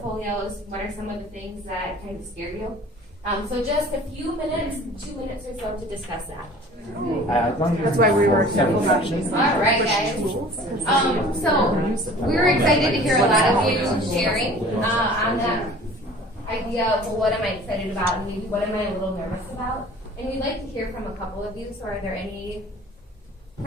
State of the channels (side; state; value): both; normal; correlation 0.46